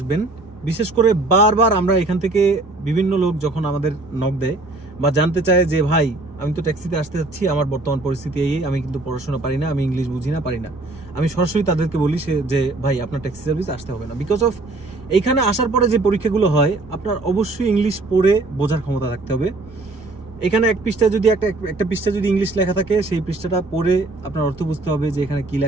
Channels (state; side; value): quieter; left; 3.0 dB